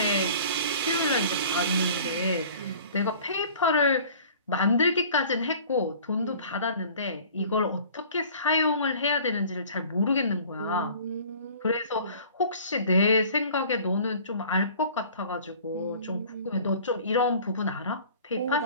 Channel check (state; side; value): inverted; both; correlation -0.47